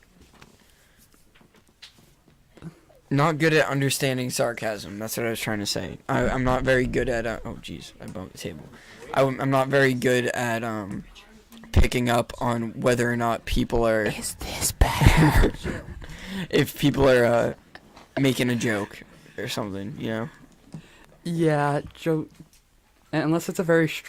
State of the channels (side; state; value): both; identical; correlation 1.00